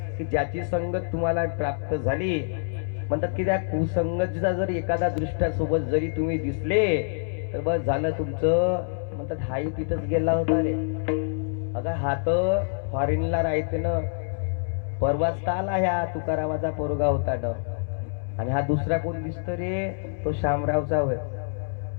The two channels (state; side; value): silent; right; 61 dB below the other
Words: की ज्याची संगत तुम्हाला प्राप्त झाली, म्हणतात की त्या कुसंगतीचा जर एखादा दृष्ट्यासोबत जरी तुम्ही दिसले तर बस झालं तुमचं. म्हणतात हाही तिथंच गेला होता रे. अगं हा तर फॉरेनला राहते ना, परवाच आला ह्या तुकारामाचा पोरगा होता ना. आणि हा दुसरा कोण दिसतो रे? तो शामरावचा होय.